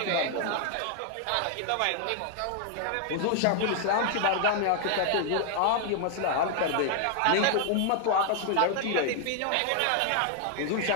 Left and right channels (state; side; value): different; both; correlation 0.00